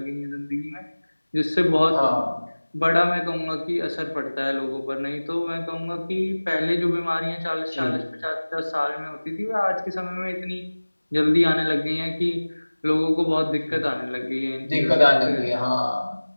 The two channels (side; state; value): both; inverted; correlation -1.00